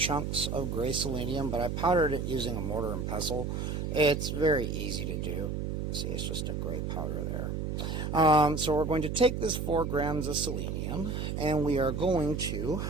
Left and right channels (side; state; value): right; noise; hum, 2 dB below the sound